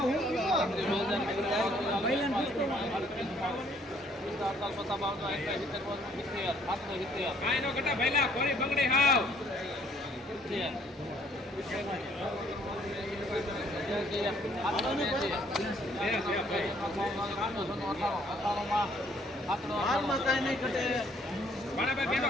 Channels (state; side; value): normal; both; correlation 0.63